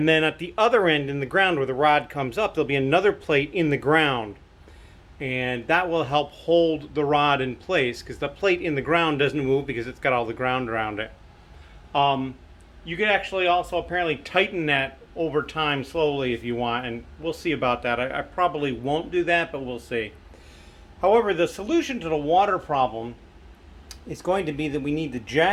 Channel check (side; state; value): both; identical; correlation 1.00